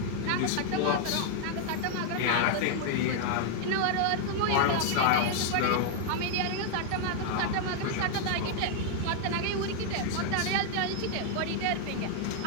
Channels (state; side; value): different; both; correlation 0.00